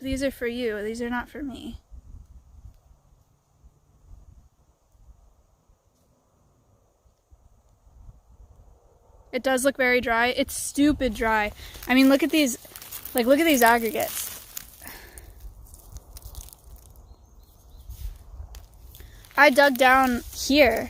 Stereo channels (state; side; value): identical; both; correlation 1.00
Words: are for you. These are not for me. It does look very dry. It's stupid dry. I mean, look at these, like, look at these aggregates. I dug down